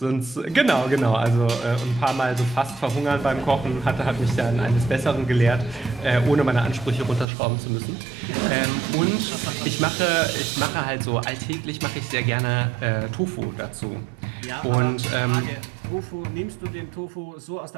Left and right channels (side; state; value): left; drops out; at 7.2 s